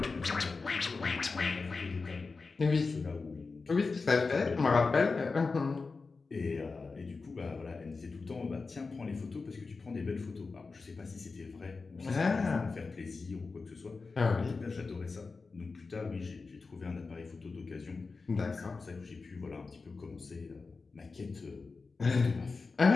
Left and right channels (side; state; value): right; quieter; 4.2 dB